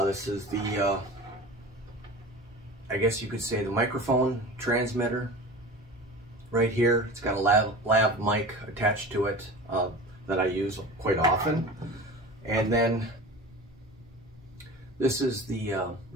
This is the I guess you could say the microphone transmitter right here. It's got a lav mic attached to it that I use quite often. And then this is the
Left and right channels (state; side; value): normal; both; correlation 0.35